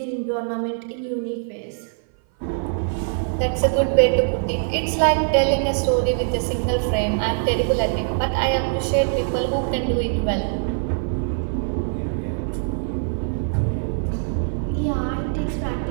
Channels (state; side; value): silent; left; 57 dB below the other